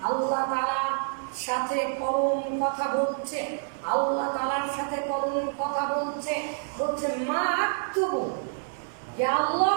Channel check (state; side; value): silent; left; 56 dB below the other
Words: আল্লাহ তাআলার সাথে কলম কথা বলছে, আল্লাহ তাআলার সাথে কলম কথা বলছে, বলছে মা আক্তুবু, হে